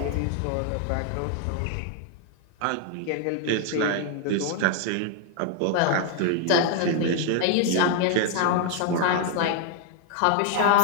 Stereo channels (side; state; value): both; different; correlation 0.01